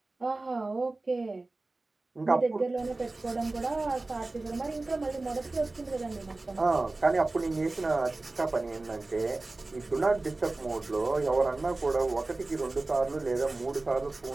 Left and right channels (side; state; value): left; quieter; 3.1 dB